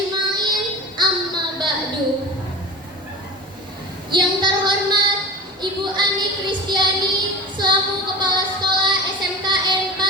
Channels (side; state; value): both; normal; correlation 0.34